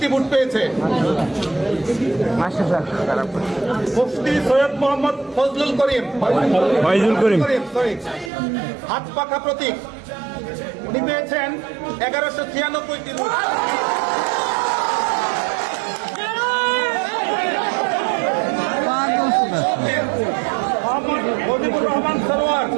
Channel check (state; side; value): drops out; left; at 8.3 s